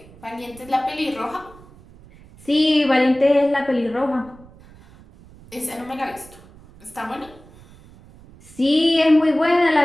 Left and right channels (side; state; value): right; noise; rumble, 23 dB below the sound